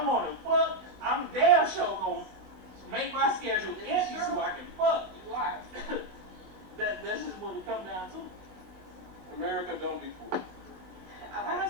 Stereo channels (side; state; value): left; late; 21 ms